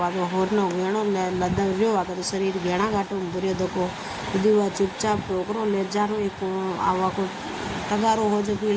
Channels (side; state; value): both; identical; correlation 1.00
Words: होरनो घेणो लदर रहो आकर तो शरीर घेणा घाटो बुरे दको यदि वह चुपचाप टोकरो ले जानो एक आवा को तगारो हो जो